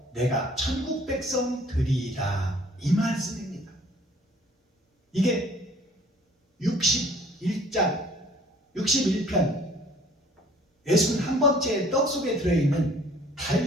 내가 천국 백성 되리이다. 이 말씀입니다. 이게 61장 61편 61번째 떡 속에 들어있는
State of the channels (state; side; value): normal; both; correlation 0.55